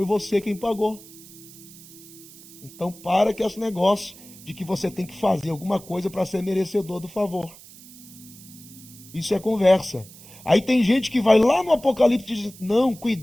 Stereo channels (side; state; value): right; noise; hiss, 20 dB below the sound